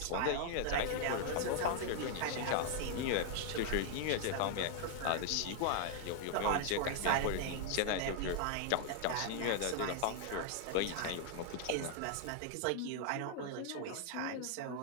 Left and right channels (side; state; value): both; different; correlation 0.00